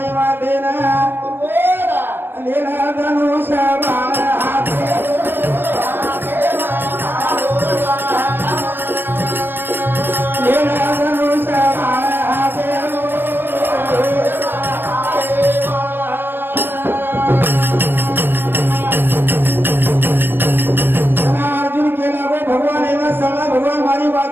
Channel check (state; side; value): late; left; 0.097 ms